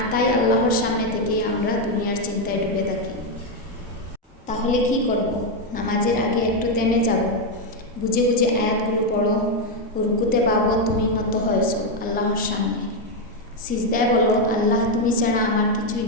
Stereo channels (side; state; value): both; normal; correlation 0.04